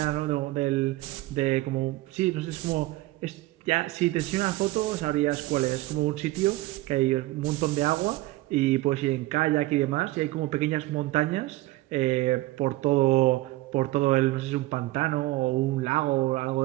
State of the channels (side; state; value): left; quieter; 18.7 dB